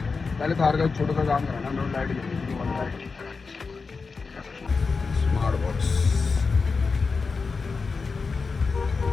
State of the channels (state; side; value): quieter; right; 4.6 dB